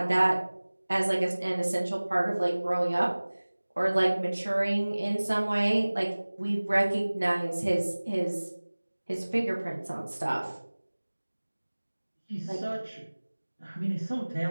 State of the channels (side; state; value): both; inverted; correlation -1.00